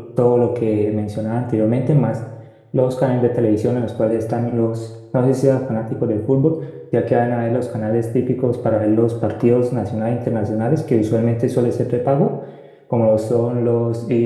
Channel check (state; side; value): identical; both; correlation 1.00